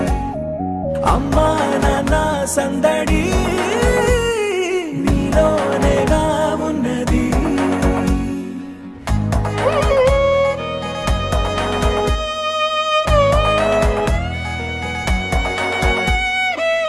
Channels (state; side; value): identical; both; correlation 1.00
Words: అమ్మా నాన్న సందడి నీలోనేగా ఉన్నది